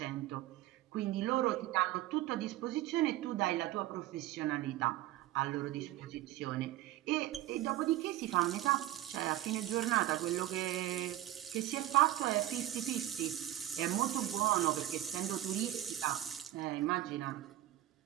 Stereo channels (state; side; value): quieter; left; 14.2 dB